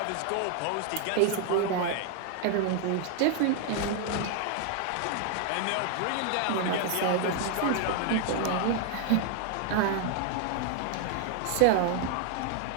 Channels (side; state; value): both; different; correlation 0.00